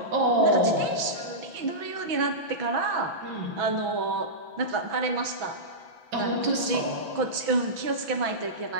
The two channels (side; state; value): left; late; 6.1 ms